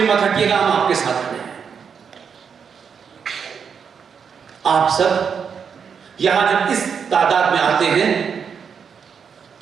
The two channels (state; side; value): quieter; left; 6.7 dB